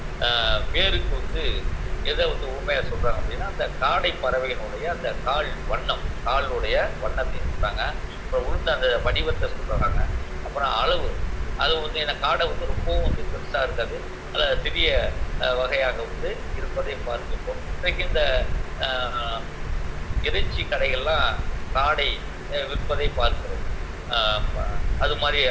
பேருக்கு வந்து எதை வந்து ஊமையாக சொல்கிறாங்க அப்படின்னா அந்த காடை பறவையினுடைய அந்த காலுடைய வண்ணத்தை சொல்கிறாங்க. அப்புறம் உளுந்த அந்த வடிவத்தை சொல்கிறாங்க. அப்புறம் அளவு, அது வந்து என்ன காடை வந்து ரொம்பவும் வந்து பெருசாக இருக்காது, அதில் சிறிய வகையாக வந்து இருப்பதை பார்த்துப்போம். இன்றைக்கு இந்த இறைச்சி கடைகள்லாம் காடை விற்பதை பார்க்கிறோம். அது மாதிரி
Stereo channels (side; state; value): both; identical; correlation 1.00